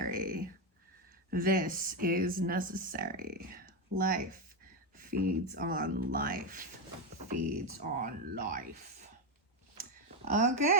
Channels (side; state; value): both; normal; correlation 0.09